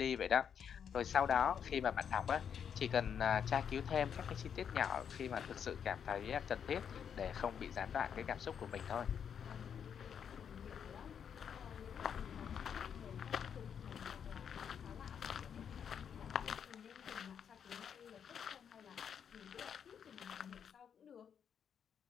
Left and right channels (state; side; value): quieter; right; 7.8 dB